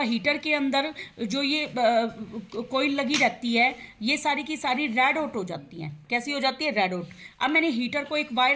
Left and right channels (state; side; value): identical; both; correlation 1.00